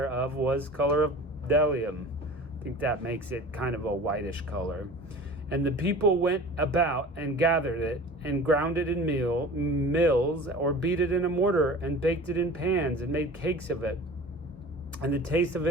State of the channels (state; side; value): normal; both; correlation 0.39